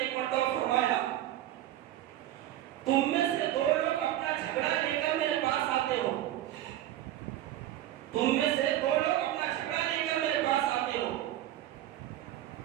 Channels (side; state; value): left; quieter; 13.2 dB